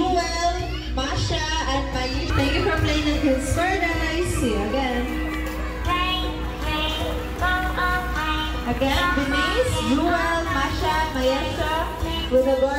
Masha, and Mayi. Thank you for playing at Kids Paradise. See you again. Again, Denise, Jewel, Masha, Mayesha, with the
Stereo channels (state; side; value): identical; both; correlation 1.00